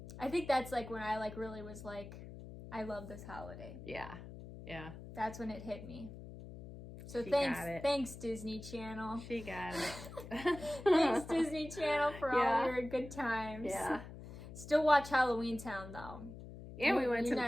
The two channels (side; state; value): left; noise; hum, 13 dB below the sound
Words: I think that's like when I like really was like, I love this holiday. Yeah. Yeah. That's when it hit me. So she thanks Disney Channel. She got it. Thanks Disney Channel for all your good times. Yeah. Still watch Halloween Town though. And we went